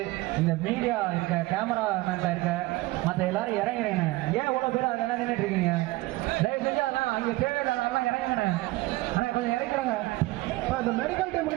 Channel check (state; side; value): quieter; left; 19.9 dB